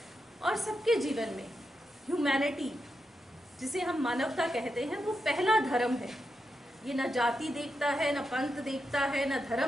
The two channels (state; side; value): normal; both; correlation 0.86